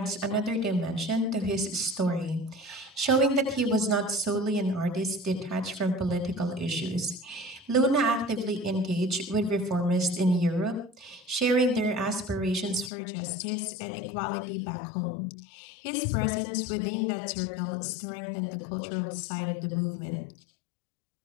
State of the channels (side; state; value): right; drops out; at 12.9 s